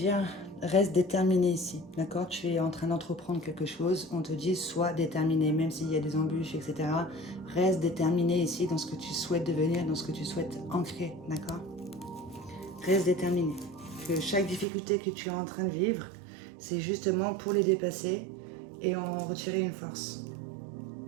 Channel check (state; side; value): drops out; left; at 14.7 s